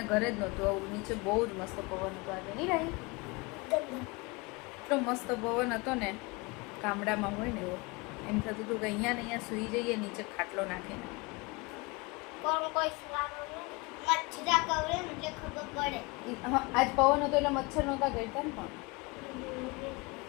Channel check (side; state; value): right; quieter; 26.5 dB